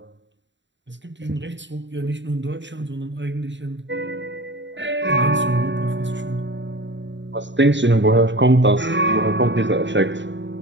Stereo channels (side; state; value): left; late; 0.53 ms